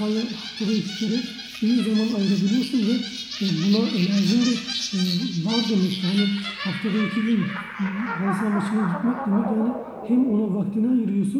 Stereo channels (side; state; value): both; identical; correlation 1.00